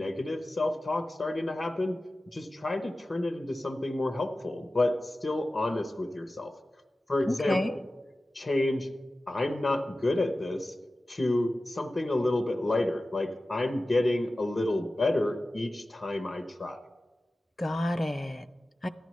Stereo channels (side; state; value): both; normal; correlation 0.95